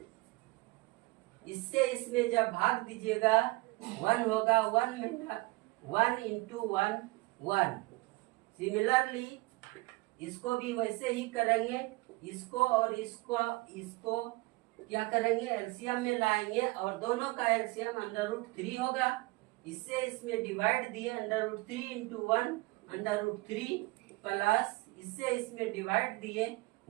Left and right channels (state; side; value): quieter; left; 23.2 dB